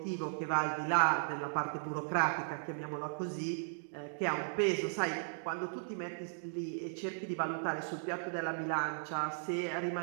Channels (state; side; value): silent; left; digital silence